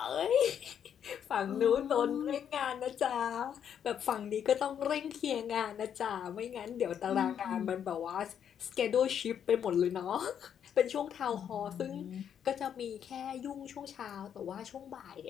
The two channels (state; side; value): quieter; right; 8.7 dB